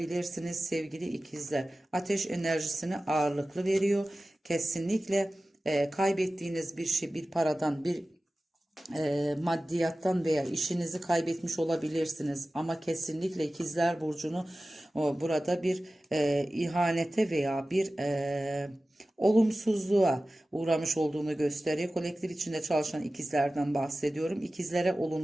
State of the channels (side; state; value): both; normal; correlation 0.96